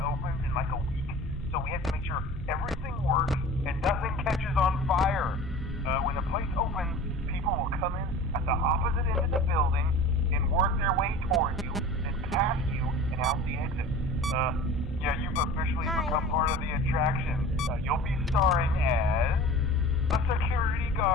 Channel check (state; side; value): normal; both; correlation 0.40